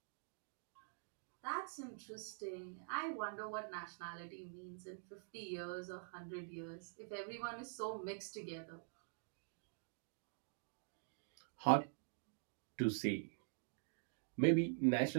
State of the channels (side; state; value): left; silent; digital silence